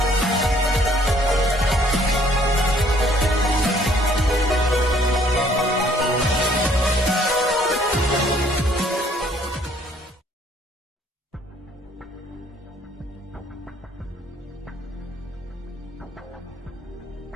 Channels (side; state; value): both; normal; correlation 0.62